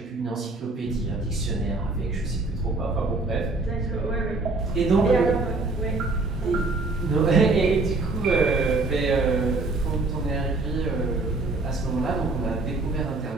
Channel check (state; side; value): quieter; left; 3.3 dB